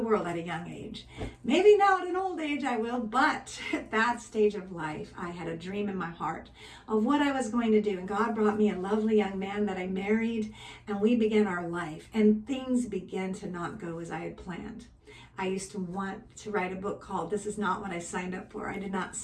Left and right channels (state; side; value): identical; both; correlation 1.00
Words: at a young age. Maybe now at an old age I will, but at that stage of life, I had a dream in my heart of what I was going to do. And God brought me a lovely young man that I married, and we began our life, and things began to not go as I had planned. I used to want to write a book called "This Is Not What I Signed Up For." I did not